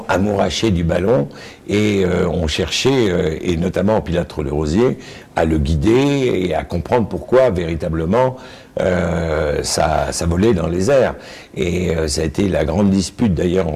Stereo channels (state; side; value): identical; both; correlation 1.00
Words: amourachés du ballon et ont cherché, et notamment Pilâtre de Rosiers, à le guider et à comprendre pourquoi véritablement ça volait dans les airs. Et ça a été la grande dispute d'ailleurs